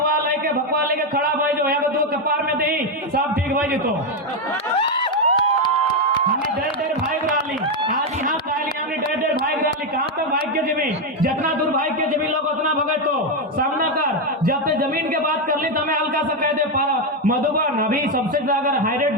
लेके भकवा लेके खड़ा भाई जो है दो कपार में दे सब ठीक भाई तो हमने डेढ़ भाग रही आज यहाँ कहली हमने डेढ़ भाग रही। कहाँ तक भाग के जमीन, जितना दूर भाग के जमीन लोग उतना भगे तो सामना कर। जब ते जमीन के बात कर ली तो मैं हल्का सा कह दे पारा मधुबन अभी सबसे अगर हाईरेट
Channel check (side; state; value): both; normal; correlation 0.05